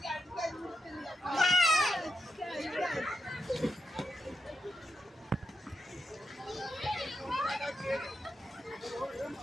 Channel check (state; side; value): normal; both; correlation 0.85